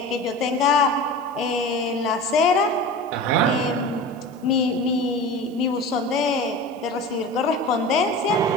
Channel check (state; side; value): noise; right; hiss, 30 dB below the sound